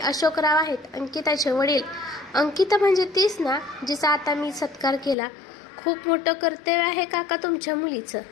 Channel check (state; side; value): drops out; right; at 5.2 s